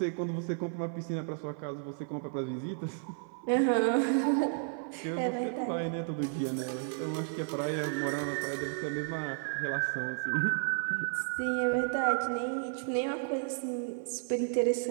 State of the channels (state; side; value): silent; left; 56 dB below the other